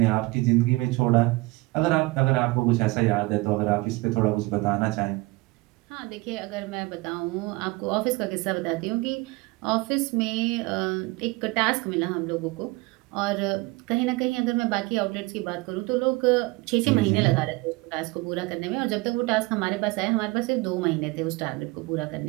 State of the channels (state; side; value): quieter; left; 22.9 dB